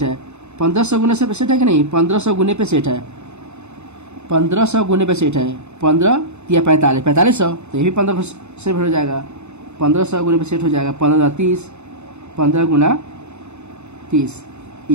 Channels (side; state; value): left; late; 0.82 ms